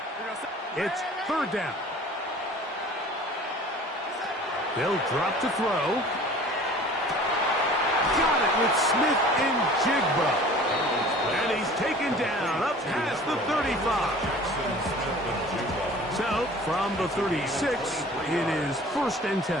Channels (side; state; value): both; normal; correlation 0.45